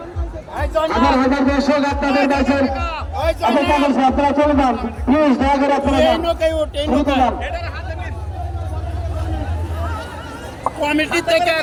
আমার হাজার দর্শক আপনাদের কাছের অপেক্ষা করছে, আপনারা চলে যান প্লিজ, দয়া করে আপনারা যান। কমিটি থেকে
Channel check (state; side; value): identical; both; correlation 1.00